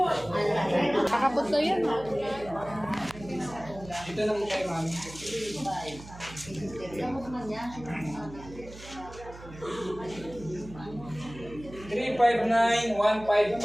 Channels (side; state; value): right; noise; hum, 16 dB below the sound